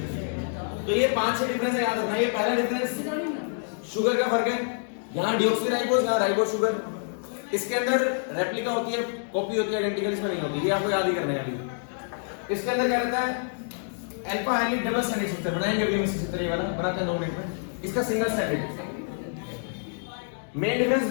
तो ये 5-6 डिफरेंस है, याद रखना। ये पहला डिफरेंस शुगर का फर्क है, यहाँ डिऑक्सीराइबोस, यहाँ राइबोस शुगर। इसके अंदर रेप्लिका होती है, कॉपी होती है, आइडेंटिकल इसमें नहीं होती, ये आपको याद ही करना है अभी। इसके अंदर क्या रहता है? Alpha hydroxy double stranded structure बनाएंगे अभी हम इसी तरह ये वाला बनाते हैं 2 मिनट में। इसका single stranded main difference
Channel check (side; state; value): right; silent; digital silence